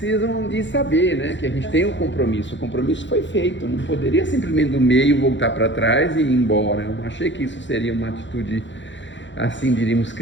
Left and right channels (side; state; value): right; late; 0.54 ms